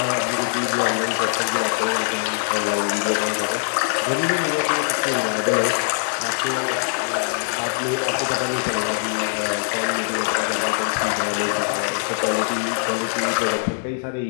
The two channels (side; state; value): right; silent; digital silence